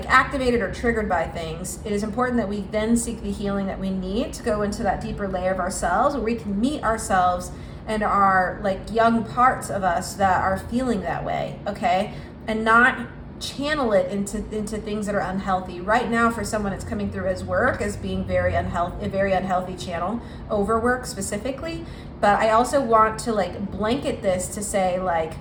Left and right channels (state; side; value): identical; both; correlation 1.00